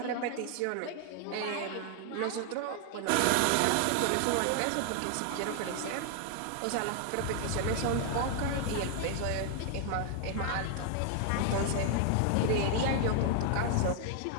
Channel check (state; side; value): different; both; correlation 0.00